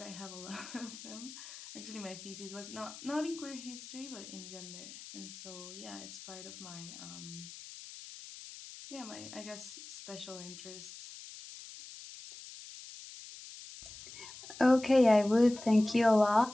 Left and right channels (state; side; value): noise; left; hiss, 14 dB below the sound